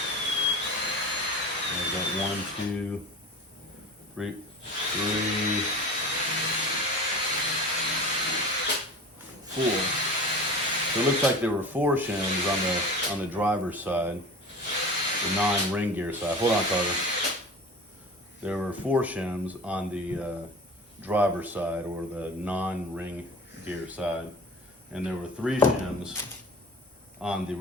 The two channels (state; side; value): normal; both; correlation 0.36